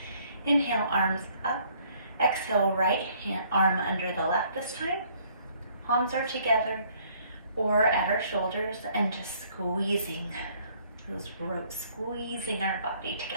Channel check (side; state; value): both; inverted; correlation -0.62